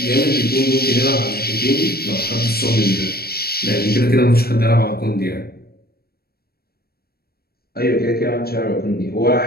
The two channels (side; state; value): right; late; 0.45 ms